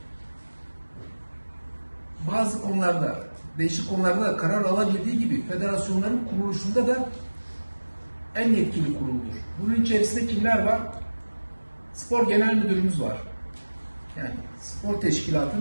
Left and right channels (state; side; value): inverted; both; correlation -1.00